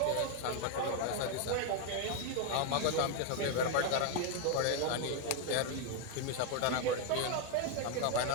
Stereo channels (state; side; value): different; both; correlation 0.00